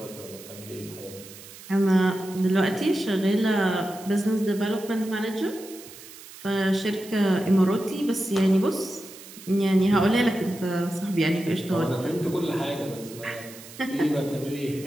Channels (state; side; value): noise; right; hiss, 17 dB below the sound